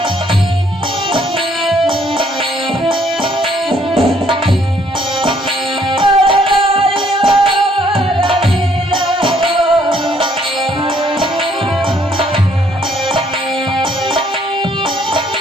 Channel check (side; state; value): both; normal; correlation 0.66